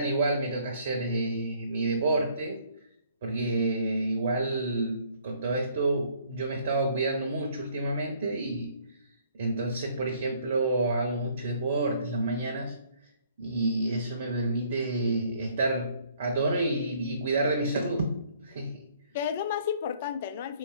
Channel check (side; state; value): both; inverted; correlation -0.62